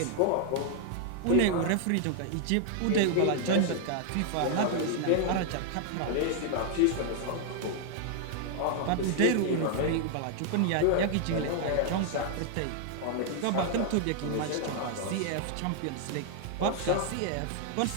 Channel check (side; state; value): both; different; correlation 0.00